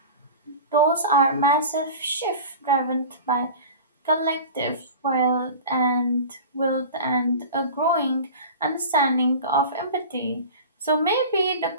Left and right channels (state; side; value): inverted; both; correlation -0.35